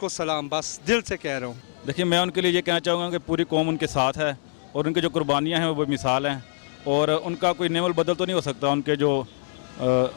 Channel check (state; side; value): silent; right; digital silence